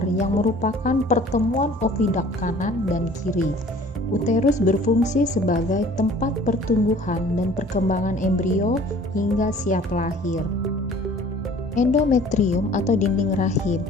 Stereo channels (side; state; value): both; normal; correlation 0.50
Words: yang merupakan pertemuan ovidak kanan dan kiri. Uterus berfungsi sebagai tempat pertumbuhan dan perkembangan embrio hingga siap lahir. Endometrium atau dinding rahim